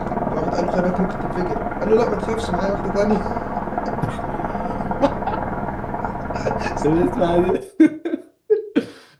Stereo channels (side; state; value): both; identical; correlation 1.00